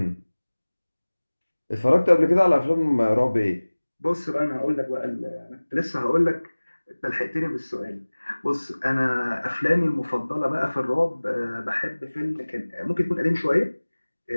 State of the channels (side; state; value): both; inverted; correlation -1.00